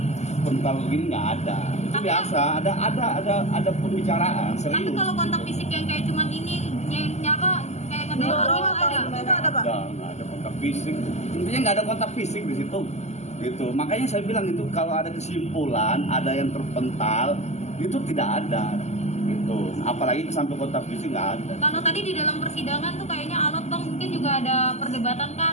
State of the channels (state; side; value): late; right; 0.33 ms